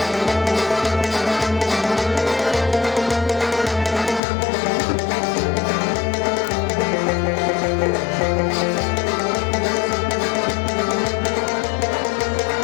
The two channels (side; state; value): right; drops out; at 4.2 s